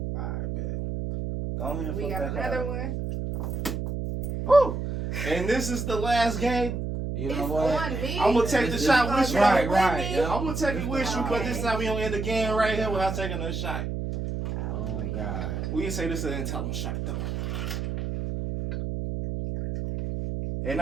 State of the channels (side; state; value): right; noise; hum, 3 dB below the sound